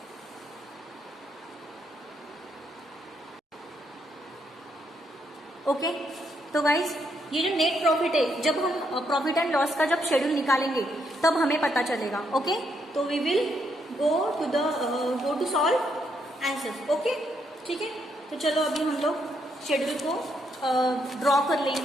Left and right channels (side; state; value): both; normal; correlation 0.76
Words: ओके, तो गाइज ये जो नेट प्रॉफिट है, जब हम प्रॉफिट एंड लॉस का जब शेड्यूल निकालेंगे तब हमें पता चलेगा। ओके, तो we will go to solve answers. Okay, ठीक है, तो चलो अभी हम लोग शेड्यूल को ड्रॉ कर